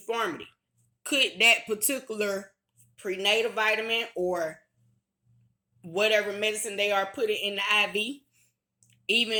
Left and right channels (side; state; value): both; identical; correlation 1.00